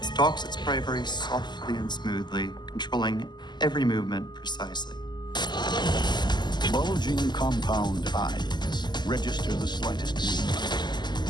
It stalks its prey very softly and smoothly, controlling every movement precisely. Bulging compound eyes register the slightest movement.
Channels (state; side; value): late; right; 0.21 ms